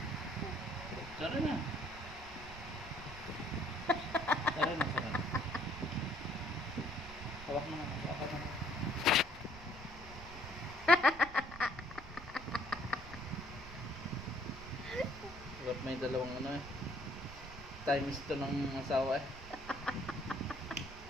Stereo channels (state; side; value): noise; right; rumble, 15 dB below the sound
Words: Sorry na. Sorry na, sorry. Hawak mo na. Hawak mo na. Ba't may dalawang ano eh. Times to ng asawa eh.